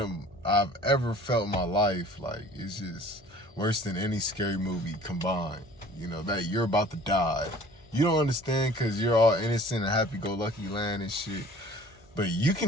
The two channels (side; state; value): both; normal; correlation 0.49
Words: I've ever felt in my life. Like, it's just worse than any scary movie combined. You know, that you're about to die. You don't understand because you're all innocent and happy-go-lucky land and shit. But you